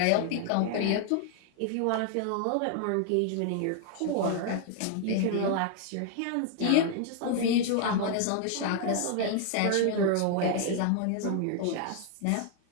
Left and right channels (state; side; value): different; both; correlation 0.00